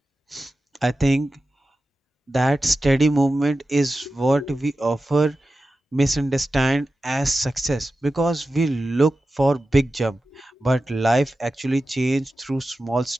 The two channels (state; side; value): normal; both; correlation 0.93